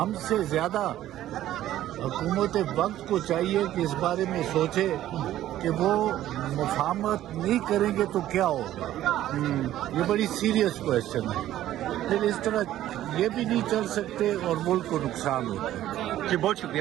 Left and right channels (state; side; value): quieter; left; 13.2 dB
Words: سے زیادہ حکومت وقت کو چاہیے کہ اس بارے میں سوچے کہ وہ مفاہمت نہیں کریں گے تو کیا ہوگا. یہ بڑی سیریس کویشچن ہے. پھر اس طرح یہ بھی نہیں چل سکتے اور ملک کو نقصان ہوتا ہے. جی بہت شکریہ